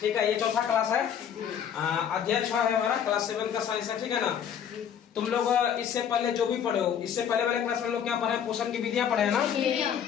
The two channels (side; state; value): right; quieter; 8.5 dB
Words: है, ये चौथा क्लास है, अध्याय 6 है हमारा, क्लास 7 का साइंस है। ठीक है ना। तुम लोग इससे पहले जो भी पढ़े हो, इससे पहले वाले क्लास में हम लोग क्या पढ़े, पोषण की विधियां पढ़े हैं